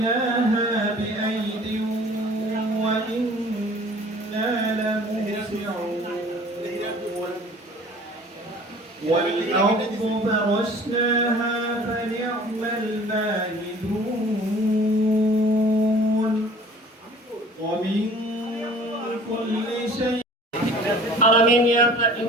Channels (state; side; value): normal; both; correlation 0.48